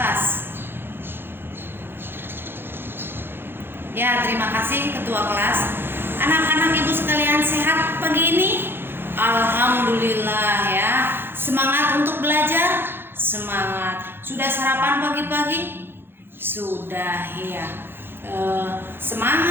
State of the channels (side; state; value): left; late; 0.10 ms